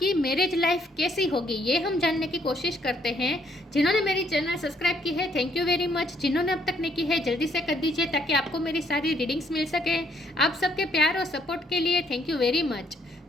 मैरिज लाइफ कैसी होगी। ये हम जानने की कोशिश करते हैं। जिन्होंने मेरी चैनल सब्सक्राइब की है, थैंक यू वेरी मच। जिन्होंने अब तक नहीं की है, जल्दी से कर दीजिए ताकि आपको मेरी सारी रीडिंग्स मिल सके। आप सबके प्यार और सपोर्ट के लिए थैंक यू वेरी मच।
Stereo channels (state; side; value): normal; both; correlation 0.69